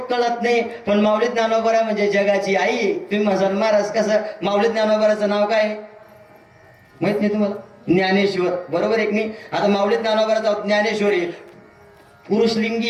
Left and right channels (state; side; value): identical; both; correlation 1.00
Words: कळत नाही. पण माऊली ज्ञानोबा म्हणजे जगाची आई. तुम्ही म्हणाल महाराज कसं, माऊली ज्ञानोबाचं नाव काय माहित नाही तुम्हाला? ज्ञानेश्वर, बरोबर एक नाही. आता माऊली ज्ञानोबाचं ज्ञानेश्वरी पुरुषलिंगी